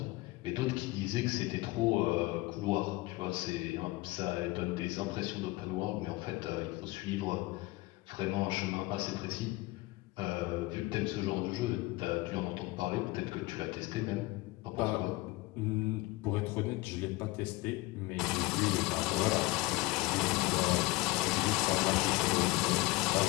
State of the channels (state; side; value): quieter; right; 20.8 dB